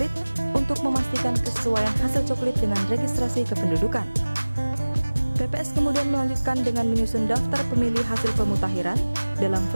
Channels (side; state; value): both; inverted; correlation -1.00